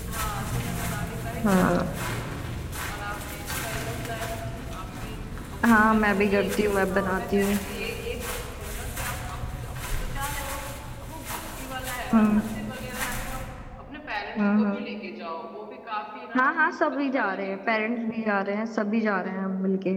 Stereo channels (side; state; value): both; identical; correlation 1.00